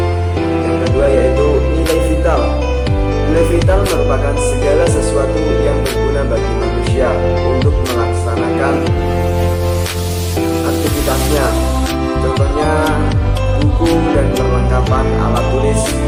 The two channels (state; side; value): identical; both; correlation 1.00